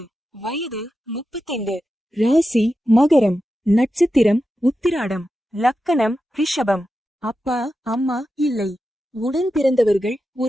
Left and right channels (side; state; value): both; normal; correlation 0.90